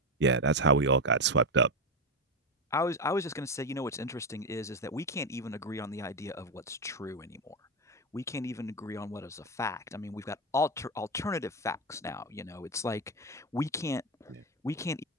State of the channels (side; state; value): both; normal; correlation 0.11